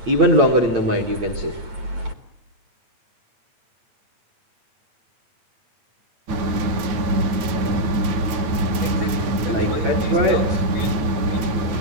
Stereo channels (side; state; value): left; late; 9.3 ms